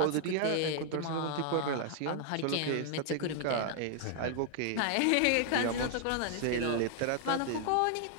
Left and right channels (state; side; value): different; both; correlation 0.00